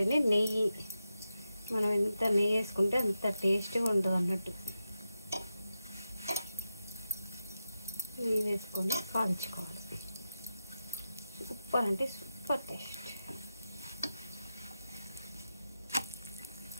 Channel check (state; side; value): inverted; both; correlation -0.90